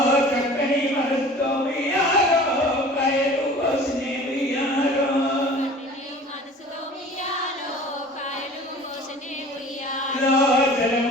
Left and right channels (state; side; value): normal; both; correlation 0.44